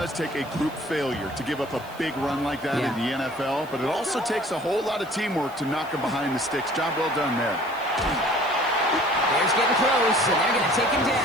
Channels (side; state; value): right; noise; hiss, 23 dB below the sound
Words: take a group failure to give up a big run like that in the NFL. But it also takes a whole lot of teamwork to knock them behind the sticks. Job well done there. Bears getting close, and they're going to take him